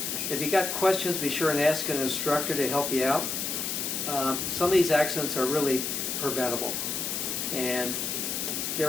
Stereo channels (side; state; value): left; noise; hiss, 2 dB below the sound